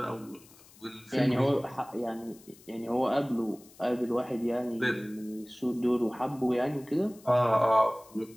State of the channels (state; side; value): noise; left; hiss, 24 dB below the sound